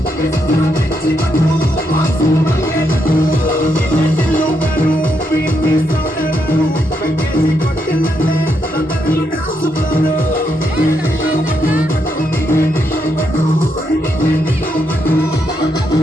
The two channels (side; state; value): both; normal; correlation 0.79